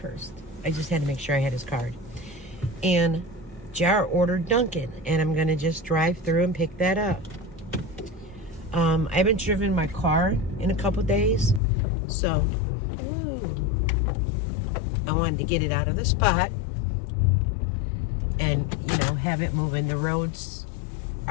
I just had to make sure I had his card. And Jar ordered Dunkin', and I'm gonna just drive through and pick that up. I haven't driven my car in a couple days, so I wanted to get it out of the spot and, have it moving. The roads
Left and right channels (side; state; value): right; drops out; at 11.6 s